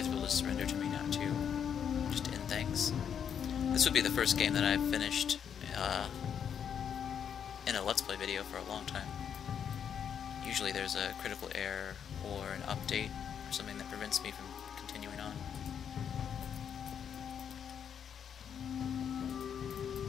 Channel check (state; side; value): quieter; right; 8.0 dB